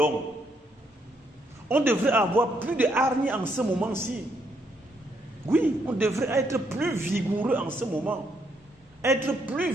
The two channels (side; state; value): both; normal; correlation 0.74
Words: On devrait avoir plus de hargne en ce moment-ci. Oui, on devrait être plus vigoureux en ce moment. Être plus